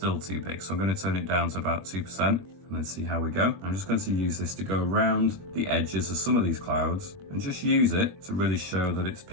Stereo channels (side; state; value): left; late; 22 ms